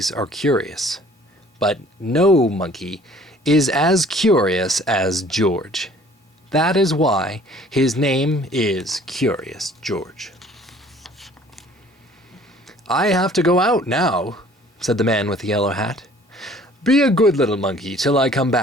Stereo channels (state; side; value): normal; both; correlation 0.54